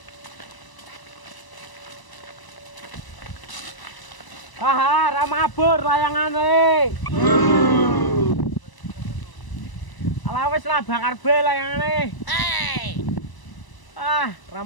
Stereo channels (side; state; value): right; late; 1.0 ms